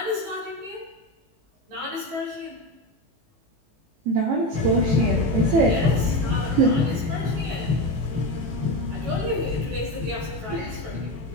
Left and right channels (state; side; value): late; left; 18 ms